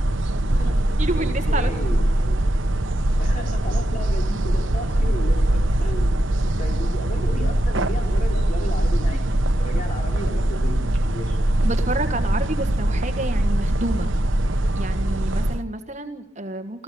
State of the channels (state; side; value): normal; both; correlation 0.87